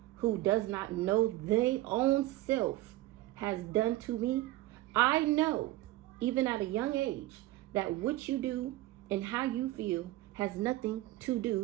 who does not know their own self has done to me. I know, even at a young age, that what you do and how you feel has nothing to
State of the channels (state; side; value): quieter; left; 17.1 dB